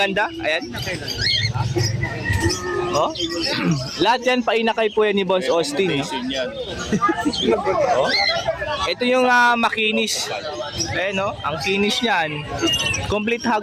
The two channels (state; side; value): identical; both; correlation 1.00